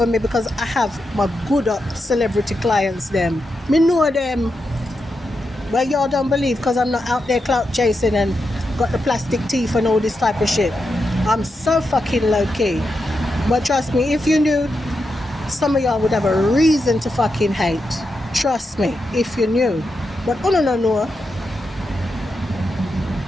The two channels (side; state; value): both; normal; correlation 0.86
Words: me, because I have my good up celebrity clients them. Me know them. But y'all don't believe, because I'm not out there clout chasing and got the plastic teeth and all this type of shit. I'm so fucking low key. But trust me, if you knew, some of y'all would have a reason to fucking hate. Trust me, if you knew. But no.